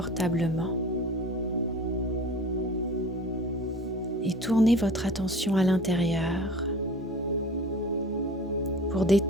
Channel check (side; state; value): both; normal; correlation 0.42